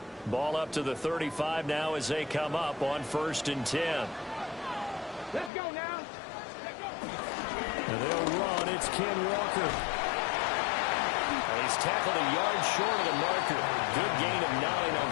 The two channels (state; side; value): drops out; right; at 5.5 s